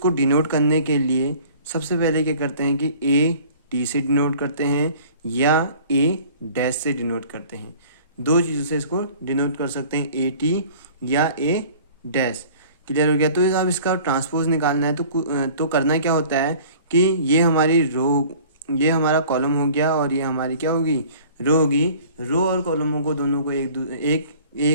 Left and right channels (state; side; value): inverted; both; correlation -0.48